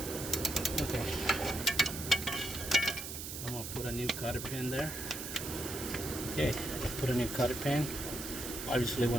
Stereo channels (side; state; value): right; noise; hiss, 7 dB below the sound